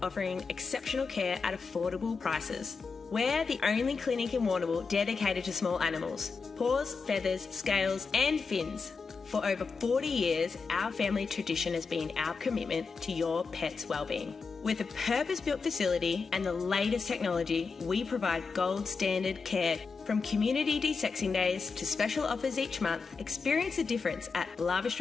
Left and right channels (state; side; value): quieter; right; 4.8 dB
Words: offering exceptional care at affordable prices. We're the only clinic in Warrnambool dedicated to small animals. Paws, feathers, scales and fins. For over 40 years, our family tradition has been our commitment to your pet's well-being. With a purpose-built facility and the latest technology, we provide gold standard care. From community de-sexing days to special offers each month, experience the difference at Lava